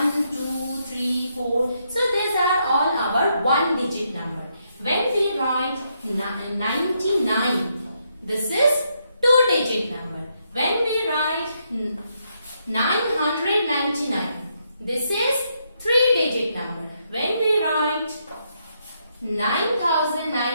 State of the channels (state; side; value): inverted; both; correlation -0.78